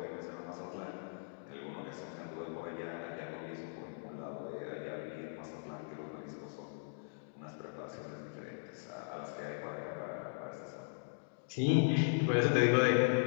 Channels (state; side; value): silent; right; digital silence